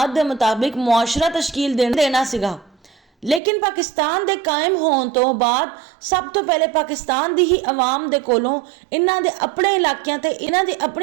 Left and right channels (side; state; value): left; drops out; at 3.4 s